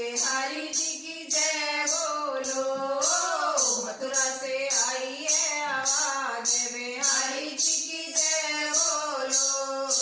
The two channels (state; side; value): identical; both; correlation 1.00